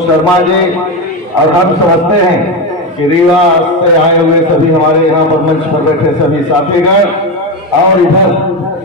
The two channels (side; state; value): both; normal; correlation 0.15